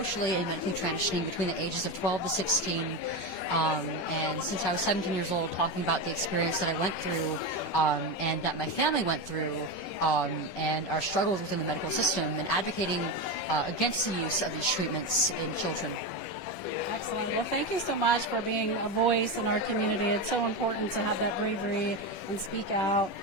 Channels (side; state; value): right; late; 10 ms